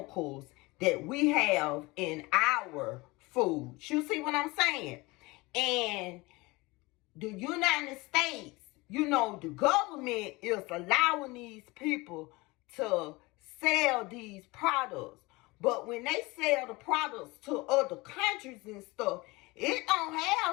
that we have in our foods. You see what I'm saying? And the United States, the government is allowing these people to sell these products. But when they sell the products to other countries and stuff, it don't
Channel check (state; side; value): quieter; right; 23.0 dB